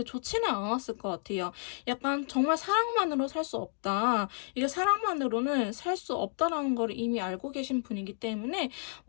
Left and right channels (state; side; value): silent; right; digital silence